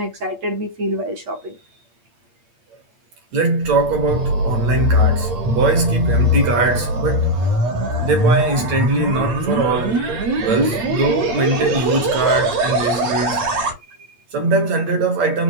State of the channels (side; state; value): left; late; 8.6 ms